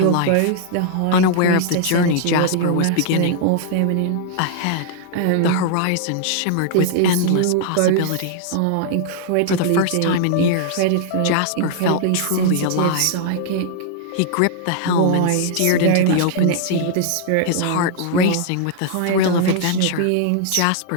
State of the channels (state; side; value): different; both; correlation -0.01